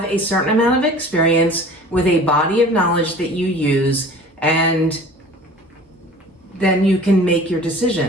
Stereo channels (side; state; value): both; normal; correlation 0.44